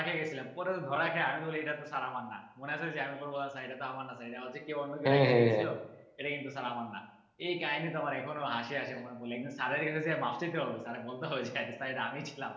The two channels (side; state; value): both; identical; correlation 1.00